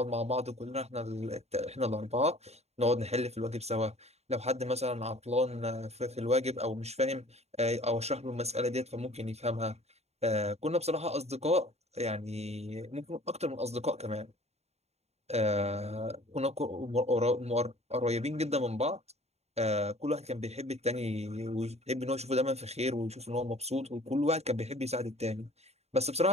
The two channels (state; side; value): late; left; 0.31 ms